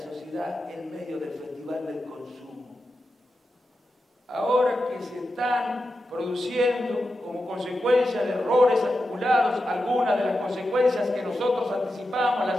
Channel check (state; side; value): normal; both; correlation 0.90